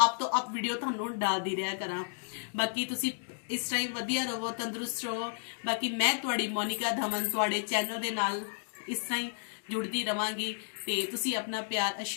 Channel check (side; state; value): right; silent; digital silence